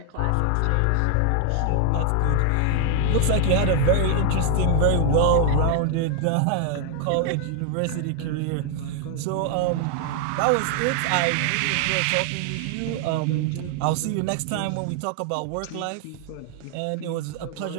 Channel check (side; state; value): both; different; correlation 0.00